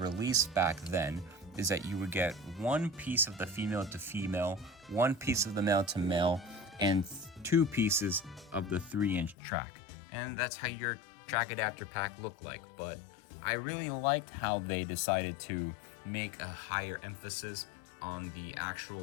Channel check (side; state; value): right; drops out; at 9.3 s